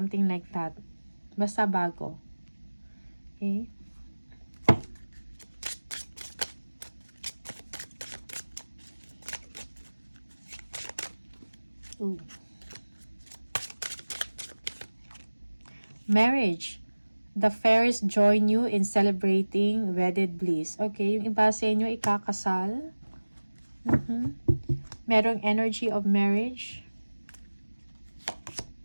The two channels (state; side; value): inverted; both; correlation -1.00